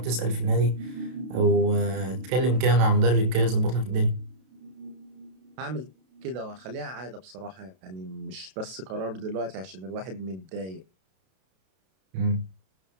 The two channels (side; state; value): left; late; 32 ms